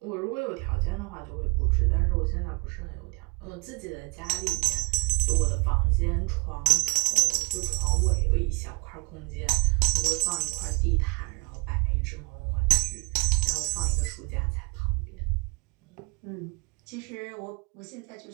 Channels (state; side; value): quieter; left; 28.3 dB